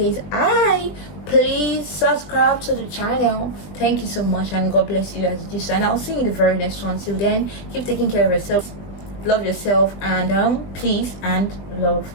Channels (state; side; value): late; right; 21 ms